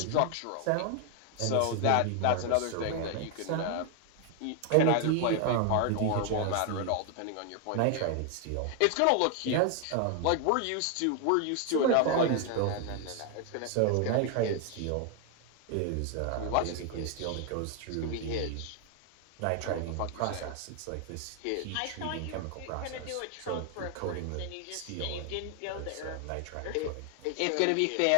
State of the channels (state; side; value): different; both; correlation 0.00